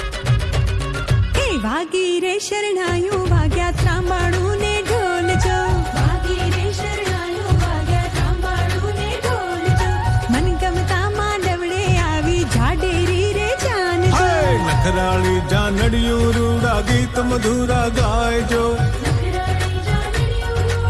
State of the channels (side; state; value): both; identical; correlation 1.00